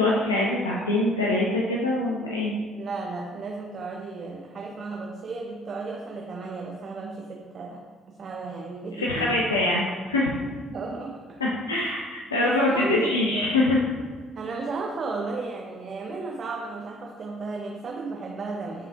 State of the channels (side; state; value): both; normal; correlation 0.48